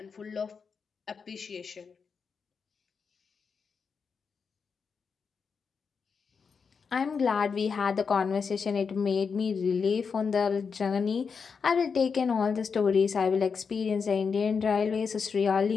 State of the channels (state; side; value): quieter; right; 5.7 dB